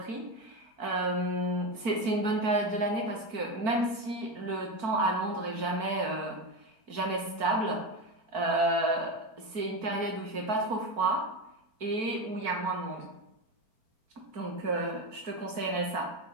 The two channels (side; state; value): left; late; 4.5 ms